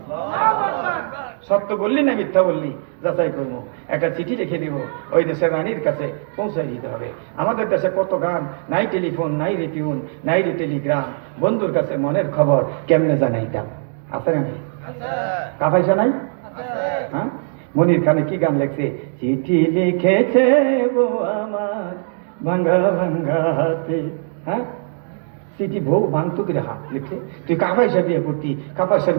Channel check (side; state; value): left; silent; digital silence